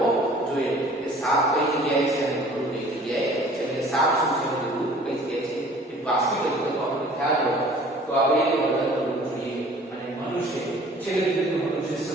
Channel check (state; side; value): normal; both; correlation 0.50